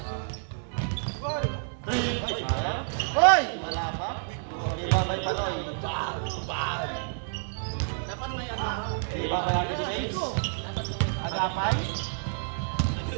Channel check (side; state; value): left; silent; digital silence